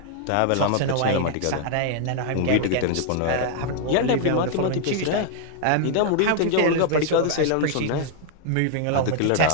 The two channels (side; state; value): both; different; correlation 0.00